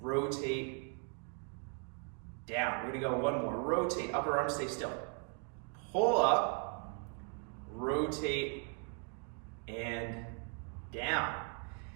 down. We're going to go one more. Rotate, upper arm stay still. Pull up, rotate, and down.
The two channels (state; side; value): quieter; left; 38.3 dB